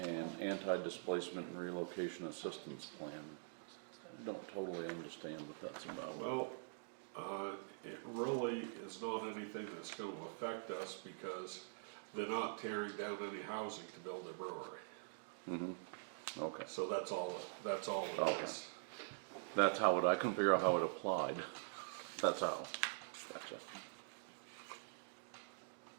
anti-displacement and relocation assistance plan, I don't totally understand what that's about. Well, it really is not anything that's gonna affect us because they're not tearing down any housing to build a brewery. Okay, So that's all it Okay. is. that's how it, I couldn't figure out how it applied. That's how, gotcha.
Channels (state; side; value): silent; left; digital silence